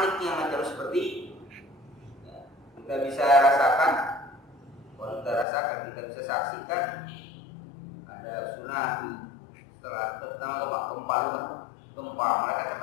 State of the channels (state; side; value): drops out; right; at 5.5 s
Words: macam seperti ya, kita bisa rasakan, kalau kita bisa saksikan ada tsunami setelah terutama gempa, mereka